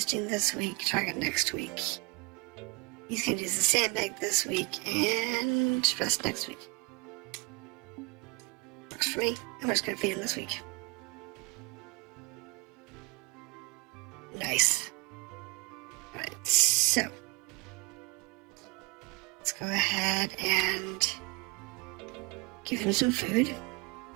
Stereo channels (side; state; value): left; quieter; 26.9 dB